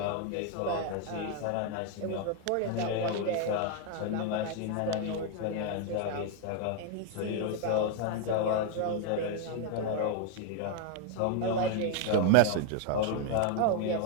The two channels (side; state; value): both; different; correlation 0.01